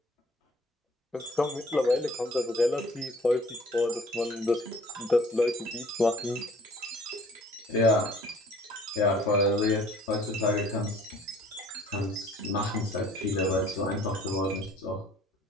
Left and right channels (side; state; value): both; normal; correlation 0.54